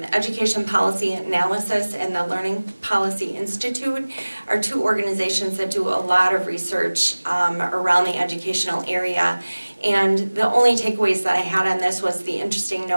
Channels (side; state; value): both; inverted; correlation -1.00